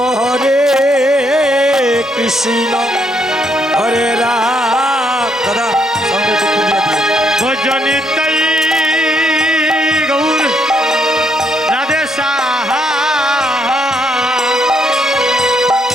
হরে কৃষ্ণ হরে রাম দাদা সঙ্গে একটু তুলিয়ে দিও ভজনিতাই গৌর রাধে শ্যাম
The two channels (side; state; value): both; normal; correlation 0.73